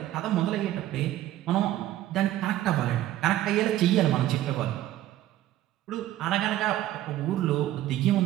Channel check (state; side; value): quieter; left; 13.9 dB